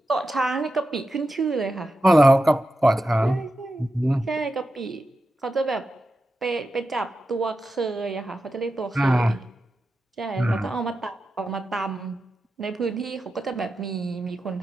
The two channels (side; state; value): both; normal; correlation 0.90